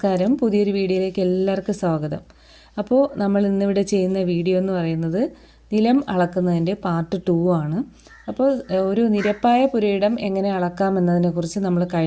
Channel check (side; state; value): both; identical; correlation 1.00